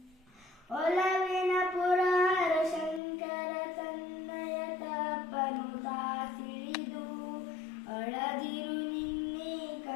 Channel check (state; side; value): drops out; right; at 3.0 s